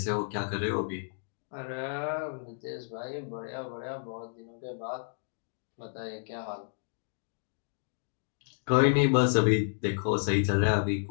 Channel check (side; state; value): right; silent; digital silence